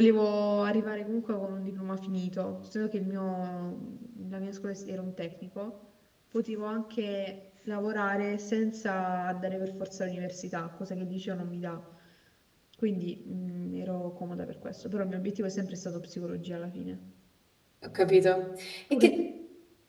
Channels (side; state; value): both; identical; correlation 1.00